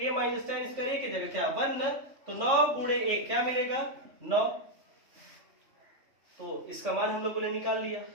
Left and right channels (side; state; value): left; late; 3.5 ms